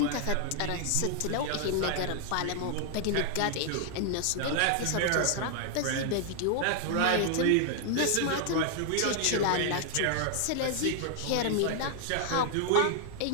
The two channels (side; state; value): both; different; correlation 0.00